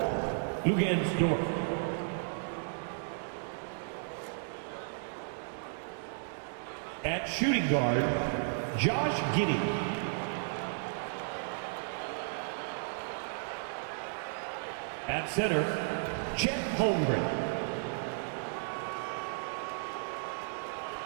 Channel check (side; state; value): left; silent; digital silence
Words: Lugansdorf. At shooting guard, Josh Giddey. At center, Chet Holmgren.